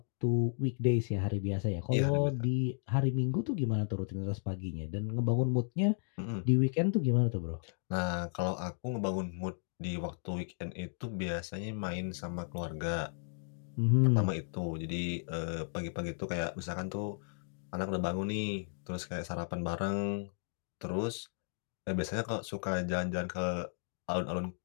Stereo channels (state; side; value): silent; right; digital silence